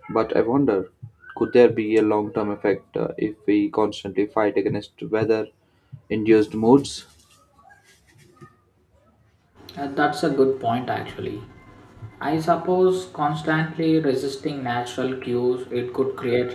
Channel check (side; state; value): both; identical; correlation 1.00